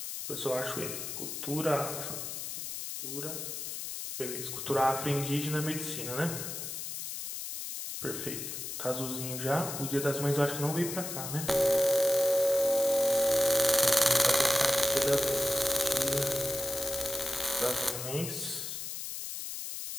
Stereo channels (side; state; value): left; noise; hiss, 6 dB below the sound